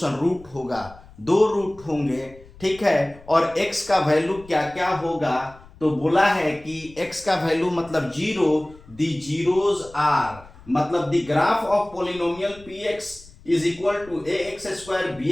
रूट होगा, 2 रूट होंगे, ठीक है। और x का वैल्यू क्या क्या होगा, तो बोला है कि x का वैल्यू मतलब 0, द जीरोज आर, मतलब the graph of polynomial px is equal to ax square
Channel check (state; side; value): noise; left; rumble, 22 dB below the sound